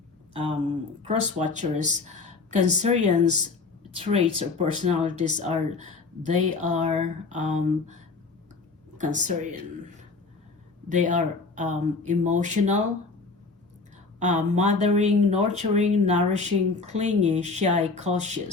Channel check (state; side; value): quieter; right; 4.1 dB